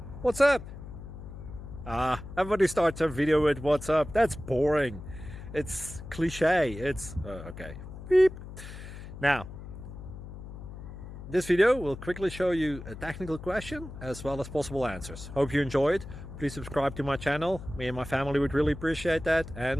What's up? Everybody starts a video with what's up. That's boring. It's cliche. It's okay. Beep. Now, this video will quickly show you a technical question as well as possible answers. Hope you enjoyed. Please subscribe to my channel. Me and my family would really appreciate that,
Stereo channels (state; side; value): noise; left; hum, 12 dB below the sound